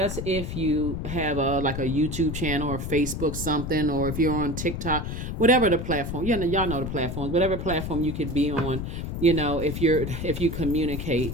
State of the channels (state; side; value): noise; left; rumble, 5 dB below the sound